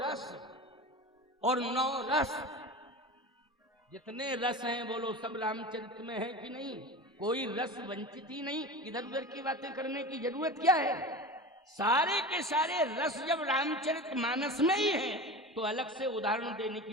और 9 रस, जितने रस हैं बोलो सब रामचरित में है कि नहीं? कोई रस वंचित ही नहीं। इधर उधर की बातें करने की जरूरत क्या है? सारे के सारे रस जब रामचरित मानस में ही है तो अलग से उदाहरण देने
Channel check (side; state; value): both; normal; correlation 0.31